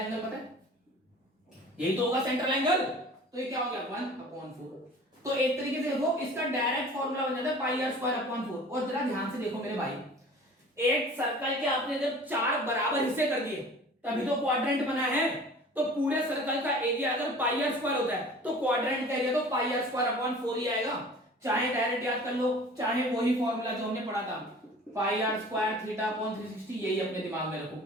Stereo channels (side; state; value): both; normal; correlation 0.44